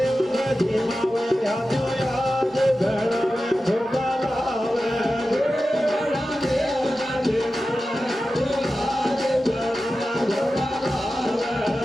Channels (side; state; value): both; normal; correlation 0.93